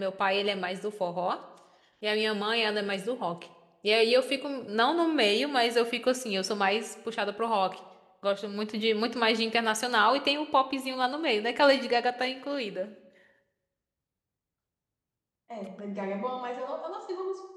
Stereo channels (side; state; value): both; identical; correlation 1.00